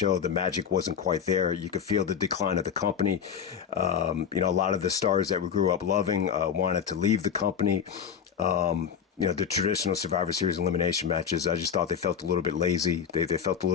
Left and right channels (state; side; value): quieter; right; 7.6 dB